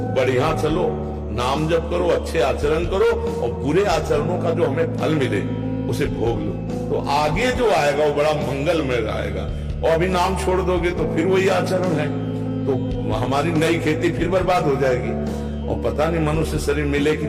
बढ़िया चलो, नाम जप करो, अच्छे आचरण करो, और बुरे आचरणों का जो हमें फल मिले उसे भोग लो, तो आगे जो आएगा वो बड़ा मंगलमय आएगा। और अभी नाम छोड़ दोगे तो फिर वही आचरण है, तो हमारी नई खेती फिर बर्बाद हो जाएगी। और पता नहीं मनुष्य शरीर मिले कि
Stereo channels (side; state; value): both; identical; correlation 1.00